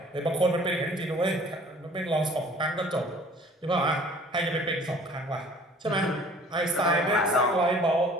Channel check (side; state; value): both; normal; correlation 0.51